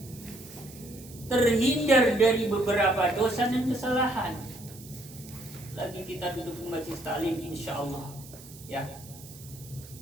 terhindar dari beberapa dosa dan kesalahan. Lagi kita duduk di majelis taklim, insya Allah ya,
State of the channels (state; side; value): noise; right; hiss, 19 dB below the sound